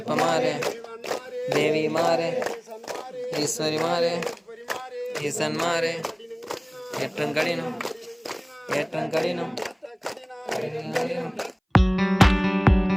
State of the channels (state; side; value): identical; both; correlation 1.00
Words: மாறே தேவி மாறே ஈஸ்வரி மாறே ஈசன் மாறே ஏற்றம் கடினம் ஏற்றம் கடினம் கடினம்